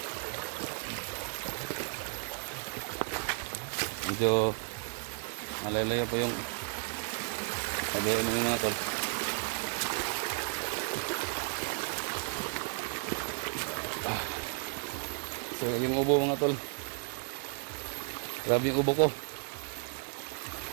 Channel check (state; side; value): silent; left; 55 dB below the other